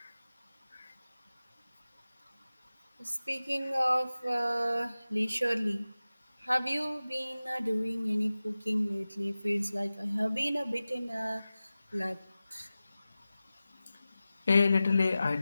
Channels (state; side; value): inverted; both; correlation -0.96